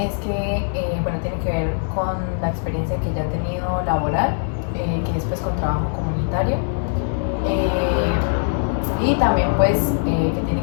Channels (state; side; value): silent; right; digital silence